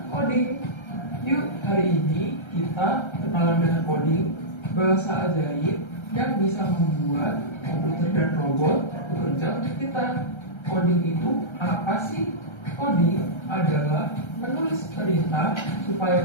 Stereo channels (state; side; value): late; right; 1.3 ms